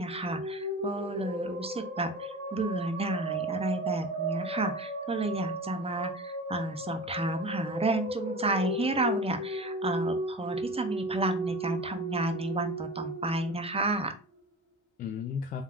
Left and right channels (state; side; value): normal; both; correlation 0.34